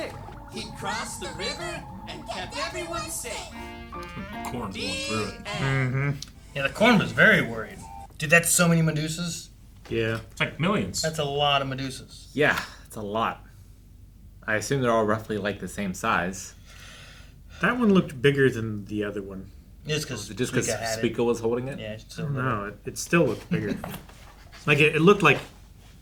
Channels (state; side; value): identical; both; correlation 1.00